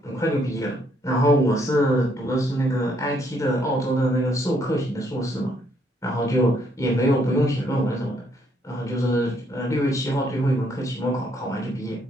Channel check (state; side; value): normal; both; correlation 0.70